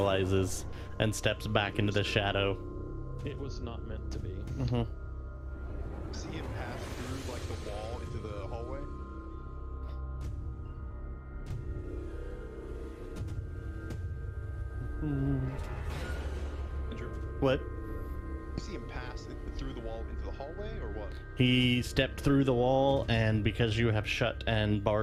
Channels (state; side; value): identical; both; correlation 1.00